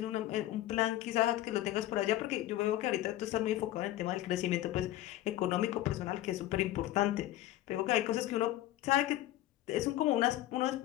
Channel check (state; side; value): quieter; right; 14.6 dB